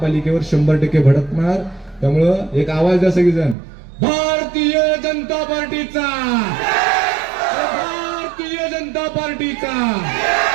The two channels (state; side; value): drops out; left; at 3.6 s